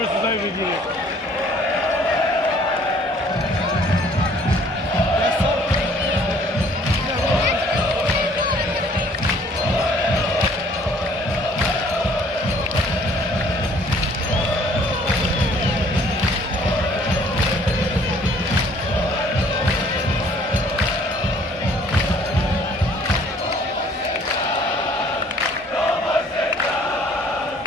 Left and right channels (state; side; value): normal; both; correlation 0.58